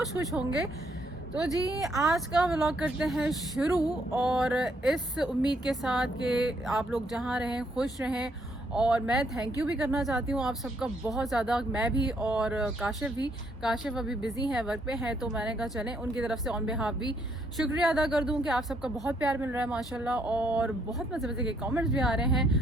होंगे। तो जी आज का व्लॉग करते हैं शुरू, और इस उम्मीद के साथ कि आप लोग जहाँ रहें खुश रहें। और मैं थैंक यू भी करना चाहती हूँ आप सबका बहुत ज़्यादा, मैं भी और काशिफ भी। काशिफ अभी बिज़ी है, वर्क पे है, तो मैंने कहा चलें उनकी तरफ से ऑन बिहाफ भी शुक्रिया अदा कर दूँ कि आप सबका बहुत प्यार मिल रहा है माशाल्लाह, और बहुत मज़े मज़े के कमेंट्स भी आ रहे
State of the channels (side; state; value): both; normal; correlation 0.71